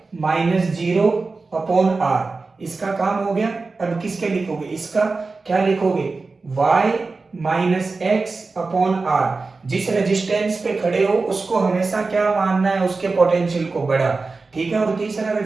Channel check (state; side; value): quieter; left; 3.9 dB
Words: माइनस 0 अपॉन r, इसका काम हो गया। अब किसके लिखोगे, इसका क्या लिखोगे, y minus x upon r। जिस रेजिस्टेंस पे खड़े हो उसको हमेशा क्या मानना है, उसके पोटेंशियल को बड़ा, ठीक है। और तीसरा